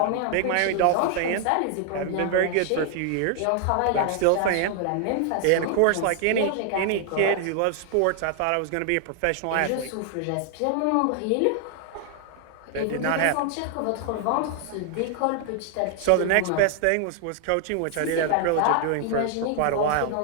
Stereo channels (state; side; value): different; both; correlation 0.00